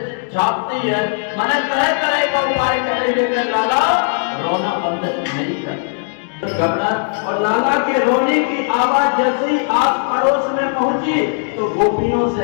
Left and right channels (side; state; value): right; silent; digital silence